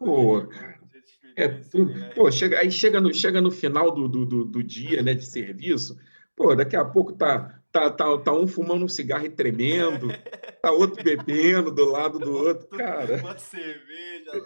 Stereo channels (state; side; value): inverted; both; correlation -1.00